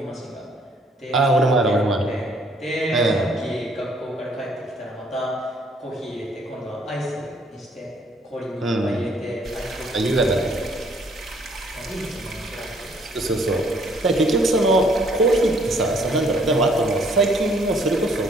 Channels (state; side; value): normal; both; correlation 0.63